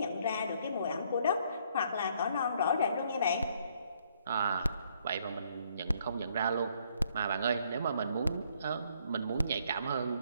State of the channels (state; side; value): inverted; both; correlation -0.67